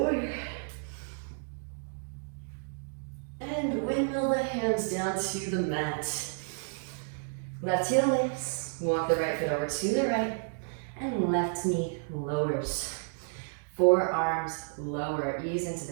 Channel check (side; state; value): left; silent; digital silence